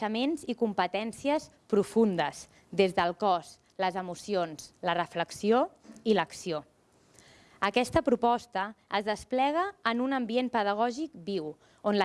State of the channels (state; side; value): identical; both; correlation 1.00